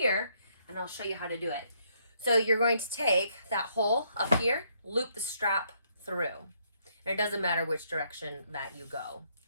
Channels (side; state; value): both; inverted; correlation -0.71